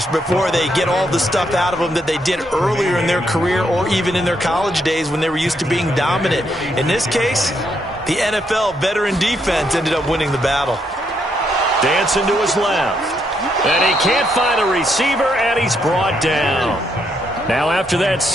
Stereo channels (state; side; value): normal; both; correlation 0.76